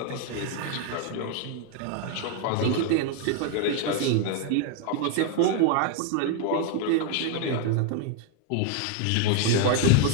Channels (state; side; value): different; both; correlation 0.00